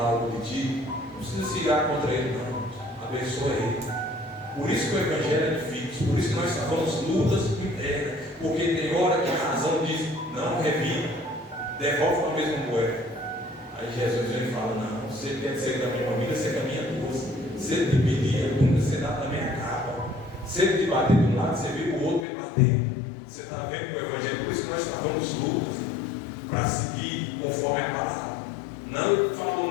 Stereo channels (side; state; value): right; drops out; at 22.2 s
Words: algo de ti, não precisa se ligar contra ele, não. Abençoa ele. Por isso que o Evangelho é difícil. Por isso que nós travamos lutas internas. Porque tem hora que a razão diz: não, revida, devolve para a mesma moeda. Aí Jesus vem e fala: não, você quer ser da minha família, você caminha duas. Se ele te pedir a túnica, você dá também a capa. Se ele te bater de um lado, você vê o outro me bater. Você está vendo o Evangelho? Por isso que nós travamos lutas para seguir conforme a palavra. Não, ele falou